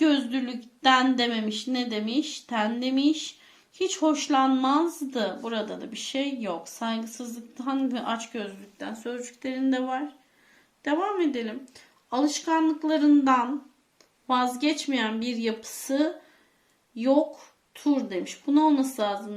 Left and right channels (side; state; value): both; identical; correlation 1.00